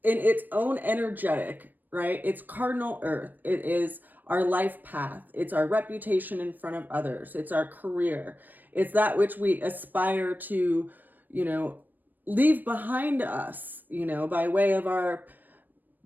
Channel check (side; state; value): left; late; 0.089 ms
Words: in its own energetic, right? It's cardinal earth. It is our life path. It's our reputation in front of others. It's our career. It's that which we aspire to, leave behind us, by way of our